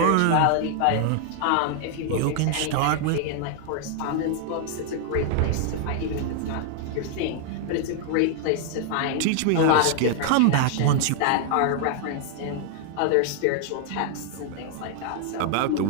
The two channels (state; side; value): different; both; correlation 0.00